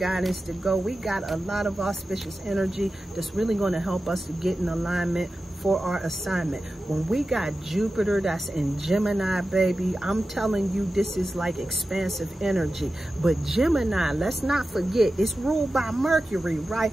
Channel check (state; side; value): normal; both; correlation 0.93